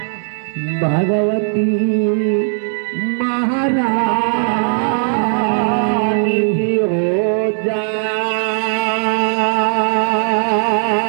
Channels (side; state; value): left; silent; digital silence